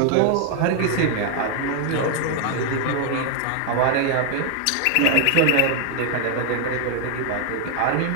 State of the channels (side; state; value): both; different; correlation 0.01